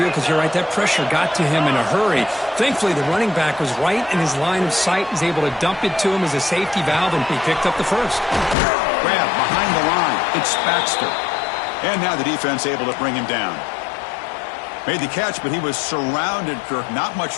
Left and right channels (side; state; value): right; drops out; at 8.6 s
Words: because you're right, that pressure got to him in a hurry. Thankfully, the running back was right in his line of sight. He's able to dump it to him as a safety valve, and he picked up the first. Grab behind the line. It's Baxter. And now the defense able to bring him down. Made the catch, but he was surrounded, Kirk. Not much